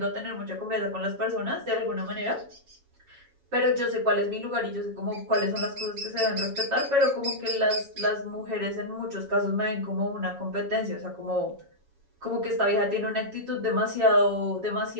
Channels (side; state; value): left; late; 7.2 ms